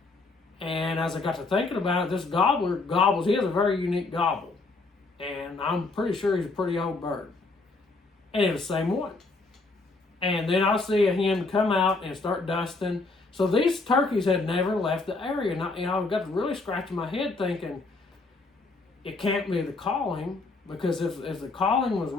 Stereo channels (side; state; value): right; quieter; 3.6 dB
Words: And as I got to thinking about it, this gobbler gobbles. He has a very unique gobble. And I'm pretty sure he's a pretty old bird. And it was the same one. And then I see a hen come out and start dusting. So these turkeys had never left the area. And I got to really scratching my head thinking, it can't be the calling, because if the calling was